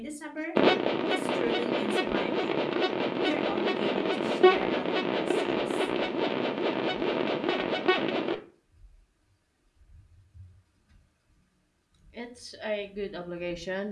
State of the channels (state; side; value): identical; both; correlation 1.00